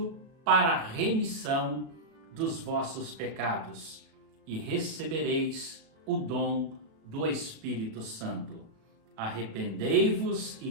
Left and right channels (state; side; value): late; left; 36 ms